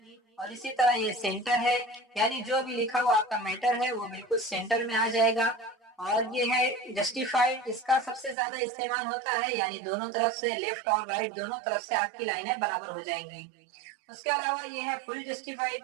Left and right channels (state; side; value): drops out; left; at 8.3 s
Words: اور اسی طرح یہ سینٹر ہے، یعنی جو بھی لکھا ہوا آپ کا میٹر ہے وہ بالکل سینٹر میں آ جائے گا۔ اور یہ ہے جسٹیفائڈ، اس کا سب سے زیادہ استعمال ہوتا ہے، یعنی دونوں طرف سے لیفٹ اور رائٹ دونوں طرف سے آپ کی لائنیں برابر ہو جائیں گی۔ اس کے علاوہ یہ ہے فل جسٹیفائڈ،